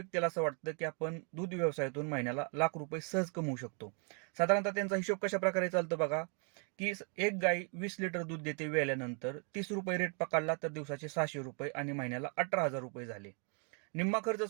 असं वाटतं, की आपण दूध व्यवसायातून महिन्याला ₹1,00,000 सहज कमवू शकतो. साधारणतः त्यांचा हिशोब कशाप्रकारे चालतो बघा, की एक गाय 20 लिटर दूध देते वेल्यानंतर ₹30 रेट पकडला तर दिवसाचे ₹600 आणि महिन्याला ₹18,000 झाले. निम्मा खर्च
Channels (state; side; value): quieter; left; 38.9 dB